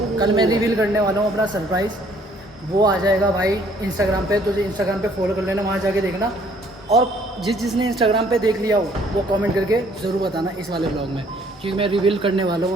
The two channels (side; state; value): both; normal; correlation 0.61